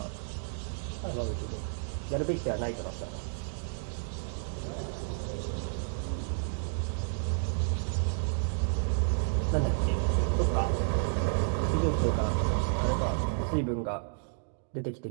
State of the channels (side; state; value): left; silent; digital silence